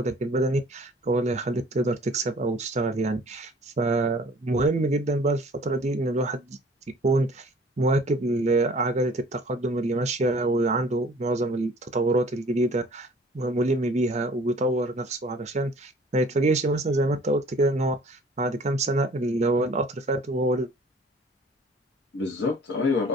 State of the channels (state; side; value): normal; both; correlation 0.51